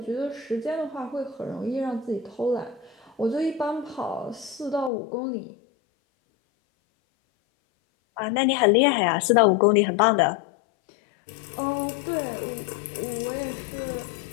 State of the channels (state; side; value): drops out; right; at 4.9 s